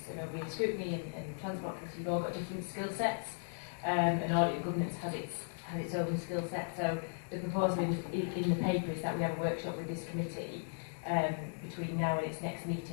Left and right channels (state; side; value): silent; right; digital silence